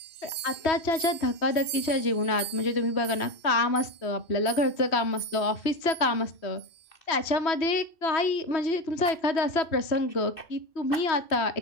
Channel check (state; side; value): late; right; 3.1 ms